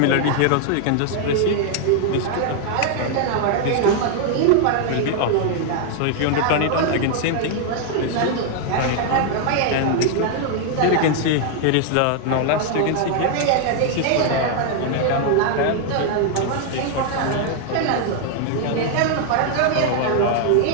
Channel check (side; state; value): both; different; correlation 0.00